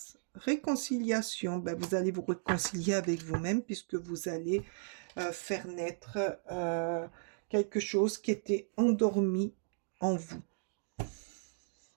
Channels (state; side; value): silent; left; digital silence